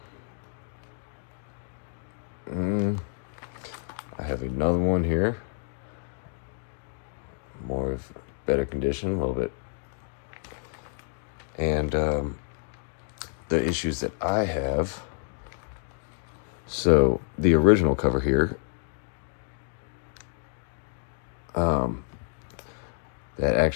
I have another one here. More of better condition, a little bit. And the issues that I have. So the original cover here, that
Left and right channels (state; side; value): silent; right; digital silence